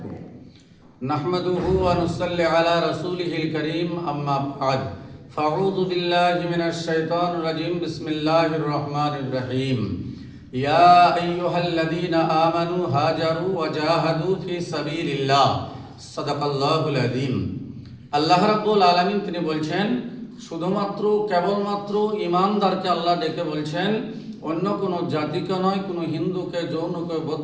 नहमदुहु व नुसल्ली अला रसूलिहिल करीम, अम्मा बाद। फ़अऊज़ु बिल्लाहि मिनश शैतानिर रजीम, बिस्मिल्लाहिर रहमानिर रहीम। या अय्युहल्लज़ीना आमनू हाजरू व जाहदू फी सबीलिल्लाह, सदाकाल्लाहुल अज़ीम। আল্লাহ রাব্বুল আলামিন তিনি বলছেন, শুধুমাত্র কেবলমাত্র ইমানদারকে আল্লাহ ডেকে বলছেন, অন্য কোনো জাতিকে নয়, কোনো হিন্দুকে, জৈনকে,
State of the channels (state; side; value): identical; both; correlation 1.00